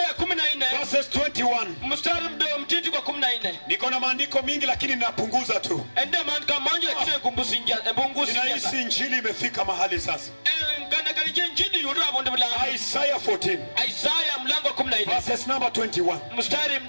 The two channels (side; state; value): both; inverted; correlation -1.00